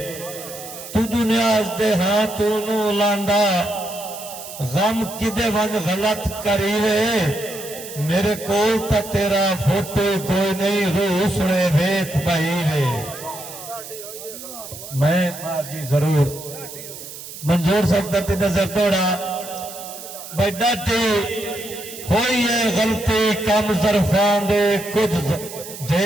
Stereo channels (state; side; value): noise; right; hiss, 12 dB below the sound